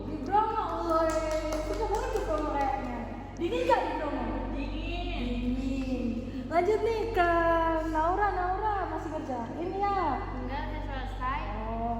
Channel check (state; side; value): identical; both; correlation 1.00